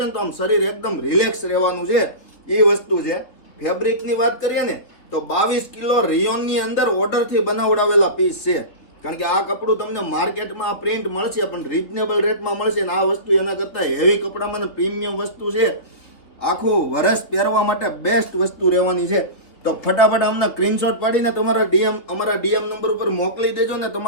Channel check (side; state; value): right; late; 3.3 ms